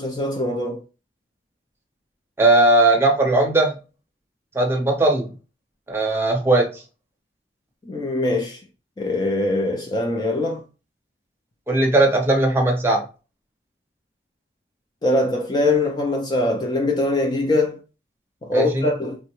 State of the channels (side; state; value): both; normal; correlation 0.36